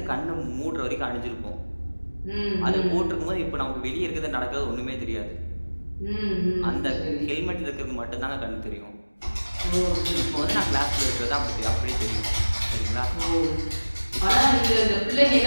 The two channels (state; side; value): inverted; both; correlation -1.00